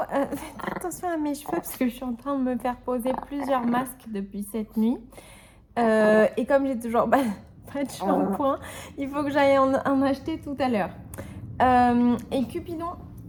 Faites attention à mes cheveux parce que je suis en train de me faire poser plusieurs masques depuis cette nuit. Et comme j'ai toujours pas de shampoing, il faut que j'aille en acheter tout à l'heure. Et Cupidon,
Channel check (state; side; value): identical; both; correlation 1.00